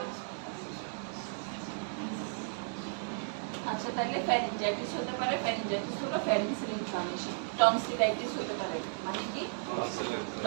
আচ্ছা, তাহলে ফ্যারিঞ্জাইটিস হতে পারে। ফ্যারিঞ্জাইটিস হলো ফ্যারিংসের ইনফ্লামেশন। টনসিলাইটিস হতে পারে, মানে কি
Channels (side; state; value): left; silent; digital silence